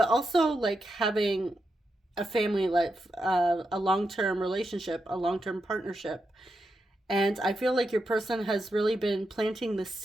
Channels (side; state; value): both; normal; correlation 0.86